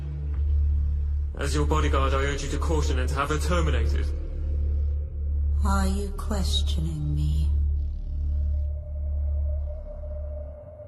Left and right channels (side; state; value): both; identical; correlation 1.00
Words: As your bodyguard, I urge you to caution and to have her terminated. Are you questioning me?